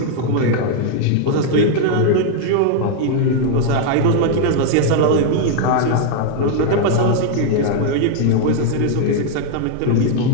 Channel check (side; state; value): both; different; correlation 0.00